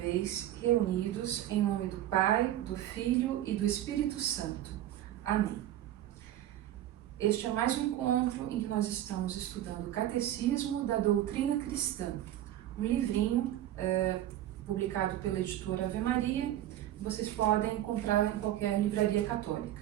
reunidos em nome do Pai, do Filho e do Espírito Santo. Amém. Este é mais um encontro em que nós estamos estudando o Catecismo da Doutrina Cristã, um livrinho publicado pela editora Ave Maria. Vocês podem comprar em qualquer livraria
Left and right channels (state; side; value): quieter; left; 12.9 dB